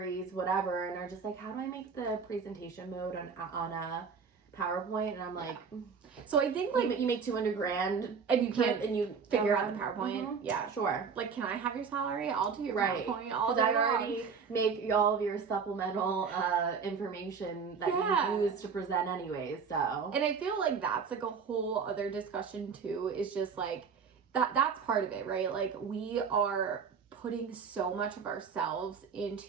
whatever, and are just like, how do I make the presentation mode on a PowerPoint? And I'm like, so I think, like, you make $200,000 and you can't, and you figure out the PowerPoint. Yeah, sure. Like, can I have your salary? I'll do your PowerPoint all day I long. already make all of your supplemental information that you use to present anyways. So, and I feel like that's, like, a whole other discussion too. Is just, like, that's part of it, right? Like, we are putting so much of ourselves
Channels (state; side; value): quieter; left; 5.9 dB